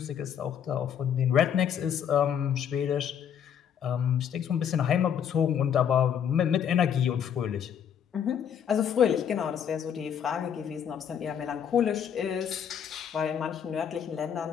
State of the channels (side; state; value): right; quieter; 8.5 dB